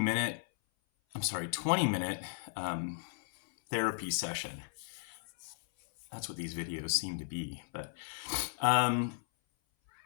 therapy session. That's what these videos seem to be. But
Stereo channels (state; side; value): silent; right; 54 dB below the other